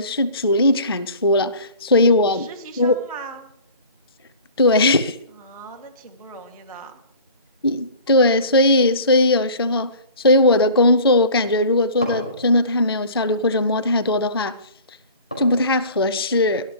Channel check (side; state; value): both; inverted; correlation -0.44